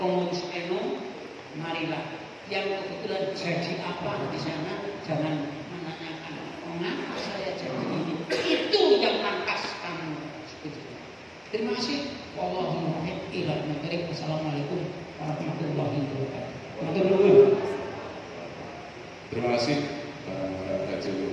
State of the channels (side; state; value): both; identical; correlation 1.00